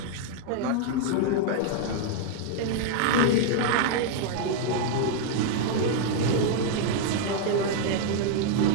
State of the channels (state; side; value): different; both; correlation 0.00